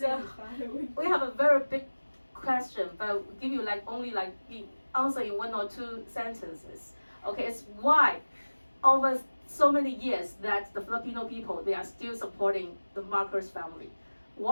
we have a very big question, but we'll give you only the answer in 1 or 2 sentences. Okay, it's why over so many years that the Filipino people, they are still supporting the Marcos family.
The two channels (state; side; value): inverted; both; correlation -1.00